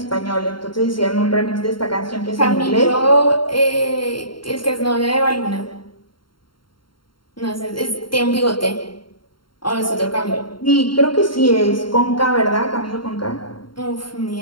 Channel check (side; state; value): right; late; 0.73 ms